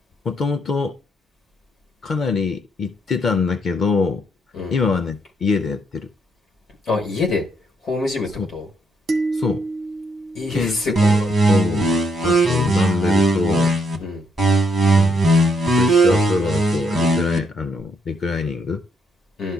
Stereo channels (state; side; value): normal; both; correlation 0.74